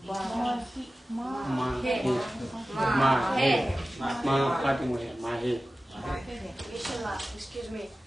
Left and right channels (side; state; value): both; normal; correlation 0.96